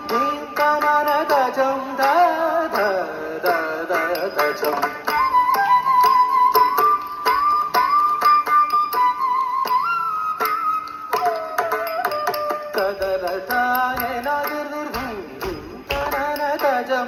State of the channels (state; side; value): identical; both; correlation 1.00